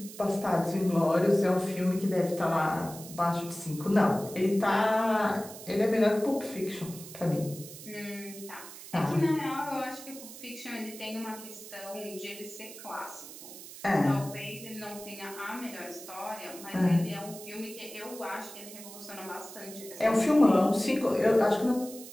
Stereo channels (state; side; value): noise; right; hiss, 14 dB below the sound